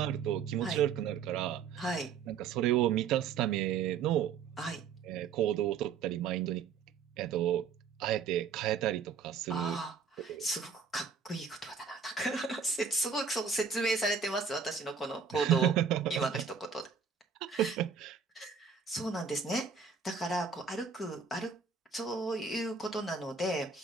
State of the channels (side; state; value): left; quieter; 6.1 dB